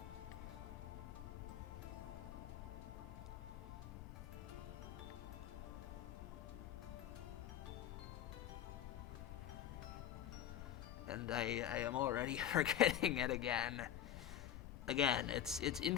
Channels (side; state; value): right; quieter; 10.7 dB